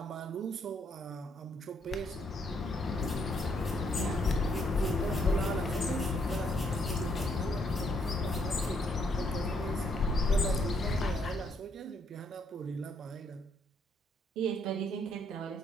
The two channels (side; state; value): both; normal; correlation 0.72